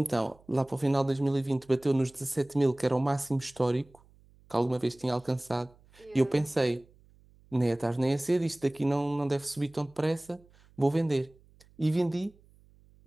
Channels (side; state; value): right; noise; hum, 29 dB below the sound